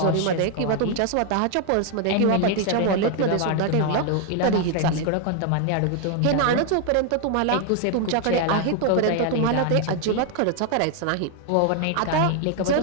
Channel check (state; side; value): different; both; correlation 0.00